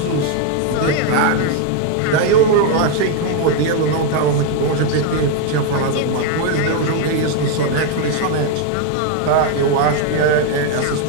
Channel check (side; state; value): both; different; correlation 0.01